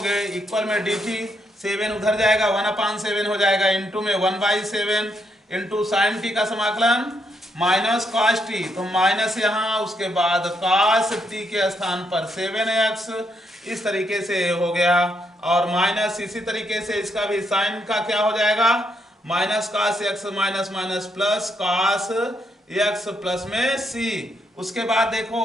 इक्वल में dt, 7 उधर जाएगा 1/7 हो जाएगा इंटू में 1/7 इंटू साइन t का समाकलन माइनस cos t, तो माइनस यहाँ उसके बाद cos t के स्थान पर 7x। इस तरीके से हो गया और माइनस इसी तरीके से इसका भी साइन का क्या हो जाएगा, minus cos x minus minus plus cos x plus में c। उसके बाद देखो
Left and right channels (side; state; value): both; normal; correlation 0.77